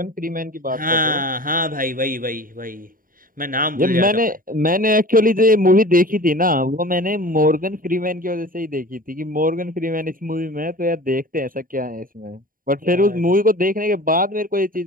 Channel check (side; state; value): left; late; 0.41 ms